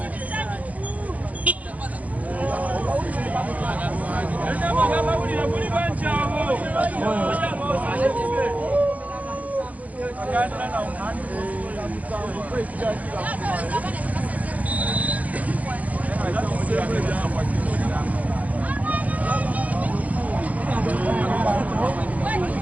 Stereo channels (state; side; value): late; left; 0.072 ms